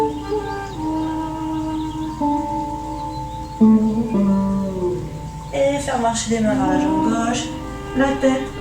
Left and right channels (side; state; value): both; identical; correlation 1.00